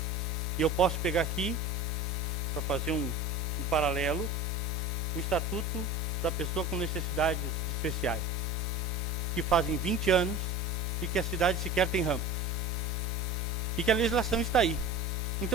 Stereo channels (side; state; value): both; normal; correlation 0.34